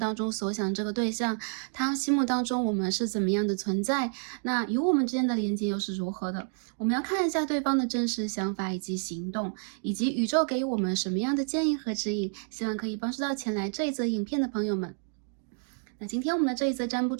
中所想这个对象，他心目当中我们是怎么样的存在，那与我们之间的连接又是如何的？我们要看一下对方的真实想法以及行动，以及宇宙给予我们什么样的建议和指引，希望可以帮助到前来这一则影片的朋友们。那今天我们的这一则占卜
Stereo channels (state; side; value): silent; left; 58 dB below the other